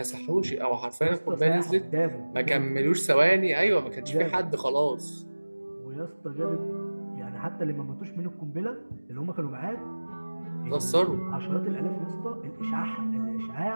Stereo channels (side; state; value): both; inverted; correlation -1.00